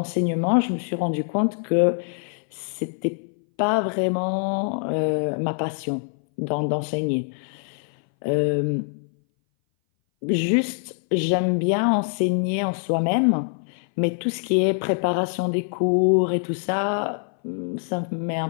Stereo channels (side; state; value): right; silent; 60 dB below the other